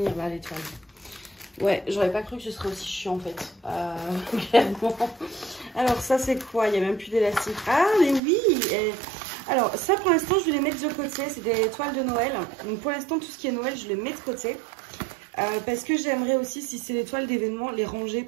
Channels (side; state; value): left; drops out; at 8.2 s